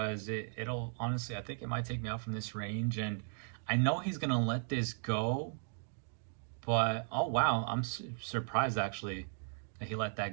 it'll, honestly, I think it might take me out from this range. And I know he's going to let this go. But, oh wow, I'm surprised actually that he let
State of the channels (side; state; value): left; silent; digital silence